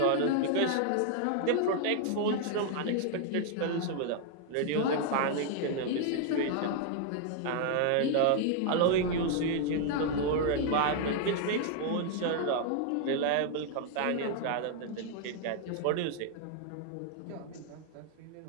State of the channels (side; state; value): both; different; correlation 0.00